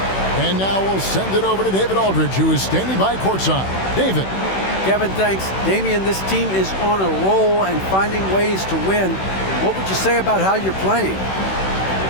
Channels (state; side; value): late; right; 16 ms